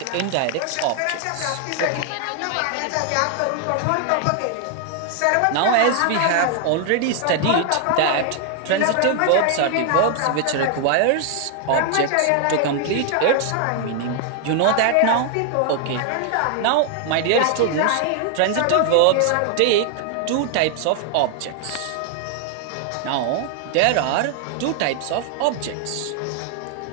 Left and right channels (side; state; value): both; different; correlation 0.00